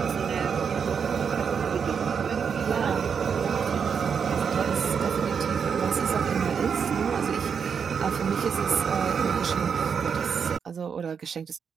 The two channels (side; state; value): left; quieter; 6.6 dB